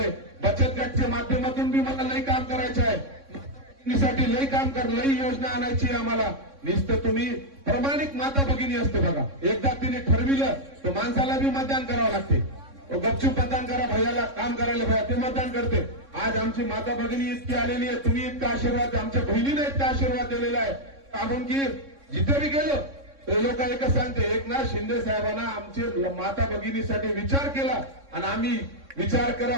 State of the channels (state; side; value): late; left; 3.6 ms